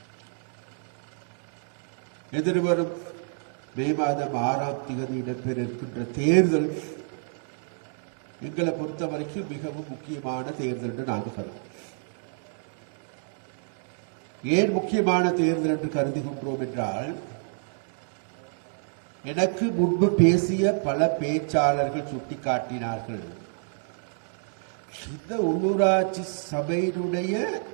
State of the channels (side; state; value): left; silent; 59 dB below the other